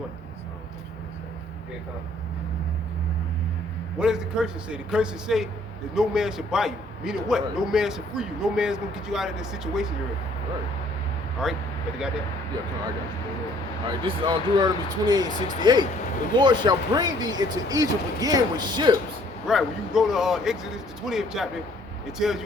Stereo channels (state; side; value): normal; both; correlation 0.60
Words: Yeah, come on. What does the curses say? The curses say that no man should buy you. Meaning what? Right. No man should free you. No man's gonna get you out of this situation you're in. Right. All right? You got that? Yeah, come on, I got you. All right, this is on Deuteronomy 28:68. The Lord shall bring thee into Egypt again with ships. Right. When you go to Exodus, the 20th chapter, it tells